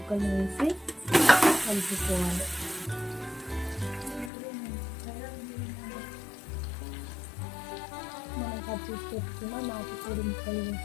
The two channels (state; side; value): drops out; right; at 4.3 s